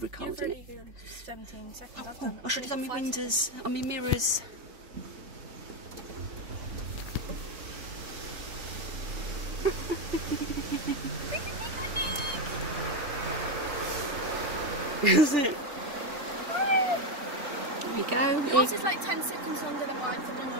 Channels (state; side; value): late; left; 3.4 ms